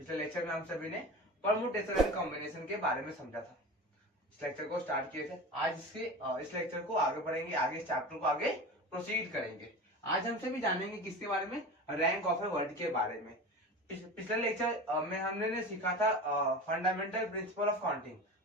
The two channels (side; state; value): both; normal; correlation 0.32